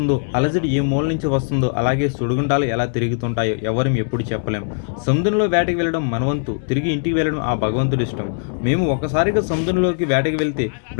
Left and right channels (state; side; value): silent; right; digital silence